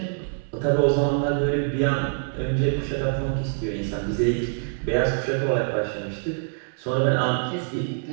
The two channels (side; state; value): left; silent; digital silence